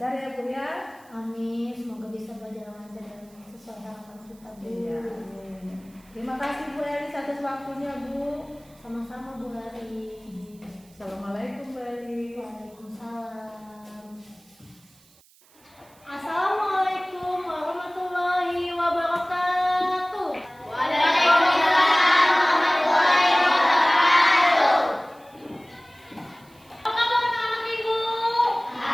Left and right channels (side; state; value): right; noise; hiss, 29 dB below the sound